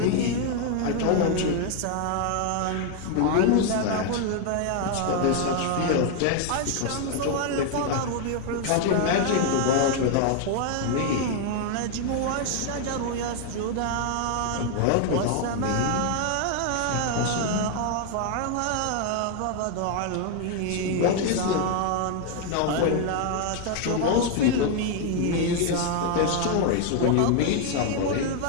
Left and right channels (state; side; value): different; both; correlation 0.00